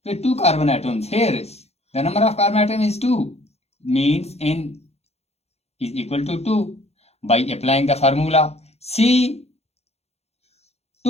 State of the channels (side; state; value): right; late; 0.31 ms